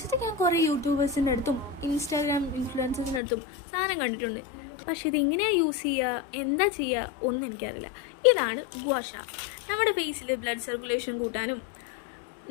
ഞാൻ കുറേ യൂട്യൂബേഴ്സിൻ്റെ അടുത്തും ഇൻസ്റ്റാഗ്രാം ഇൻഫ്ലുവൻസേഴ്സിൻ്റെ അടുത്തും സാധനം കണ്ടിട്ടുണ്ട്. പക്ഷേ ഇതെങ്ങനെയാണ് യൂസ് ചെയ്യുക, എന്താ ചെയ്യുക ഒന്നും എനിക്കറിയില്ല. ഇതാണ് ഗുവാഷ. നമ്മുടെ ഫേസിൽ ബ്ലഡ് സർക്കുലേഷൻ കൂട്ടാനും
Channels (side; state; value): right; drops out; at 3.2 s